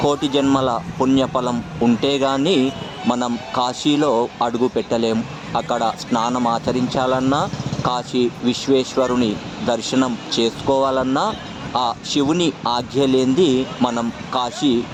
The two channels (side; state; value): both; identical; correlation 1.00